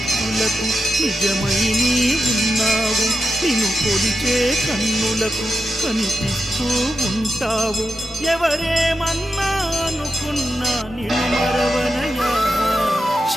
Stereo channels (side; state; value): both; normal; correlation 0.88